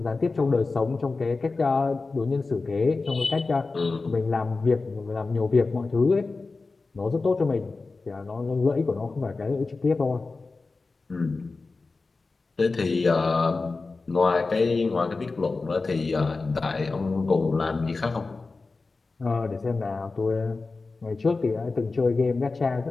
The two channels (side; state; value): right; quieter; 3.8 dB